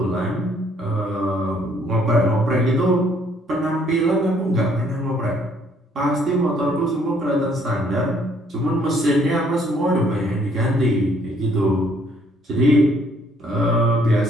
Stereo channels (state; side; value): normal; both; correlation 0.65